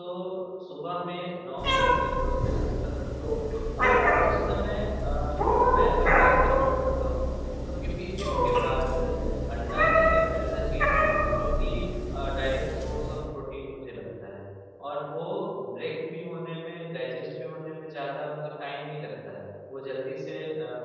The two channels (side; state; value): both; identical; correlation 1.00